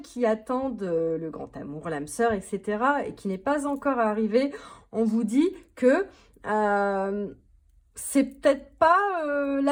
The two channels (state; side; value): identical; both; correlation 1.00